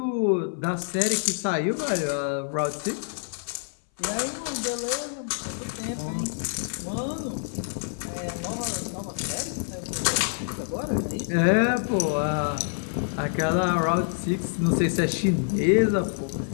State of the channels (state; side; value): silent; right; 58 dB below the other